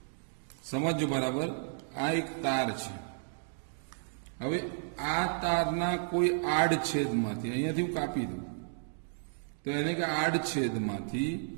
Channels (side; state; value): left; silent; digital silence